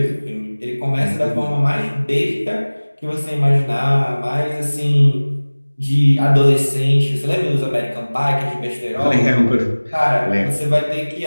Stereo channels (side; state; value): both; inverted; correlation -1.00